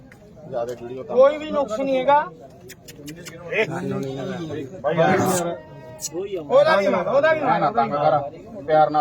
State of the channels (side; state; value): both; identical; correlation 1.00